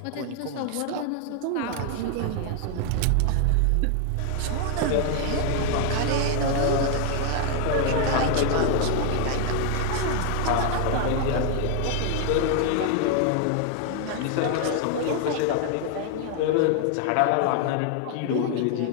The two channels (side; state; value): both; different; correlation 0.00